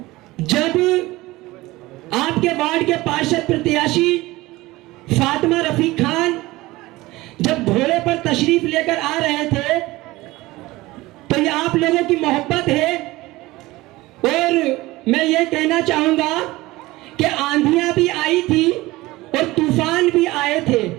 जब आपके वार्ड के पार्षद प्रत्याशी फातिमा रफीक खान जब घोड़े पर तशरीफ लेकर आ रहे थे तो ये आप लोगों की मोहब्बत है। और मैं ये कहना चाहूंगा कि आंधियां भी आई थी और तूफान भी आए थे,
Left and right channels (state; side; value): quieter; left; 19.4 dB